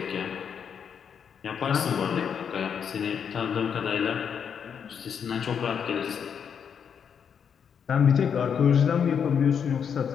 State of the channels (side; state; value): right; quieter; 7.4 dB